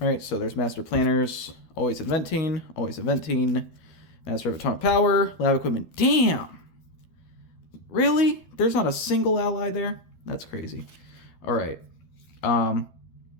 so there's Master Planners, always inventing, Master of Atomic Power, Lab Equipment. Damn! Really? There's not a single ally there? That's crazy. Alright. Then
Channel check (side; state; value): right; late; 12 ms